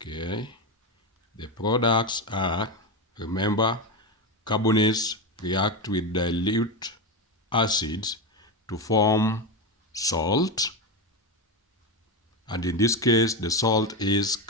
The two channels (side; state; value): both; normal; correlation 0.14